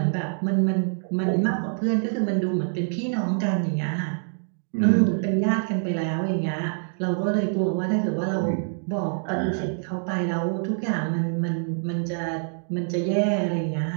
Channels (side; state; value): left; silent; digital silence